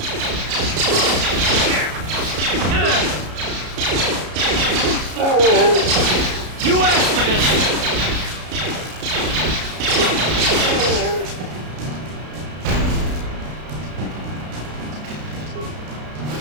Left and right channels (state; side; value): late; left; 33 ms